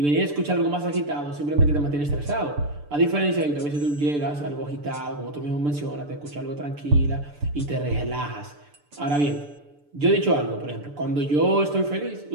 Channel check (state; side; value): late; left; 6.8 ms